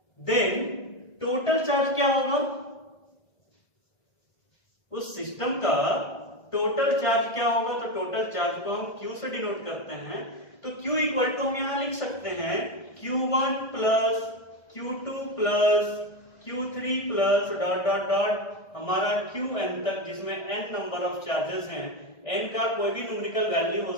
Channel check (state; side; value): late; right; 1.5 ms